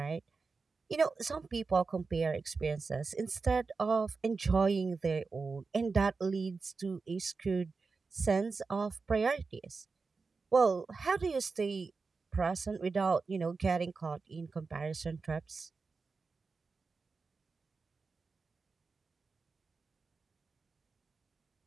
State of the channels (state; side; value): quieter; left; 4.4 dB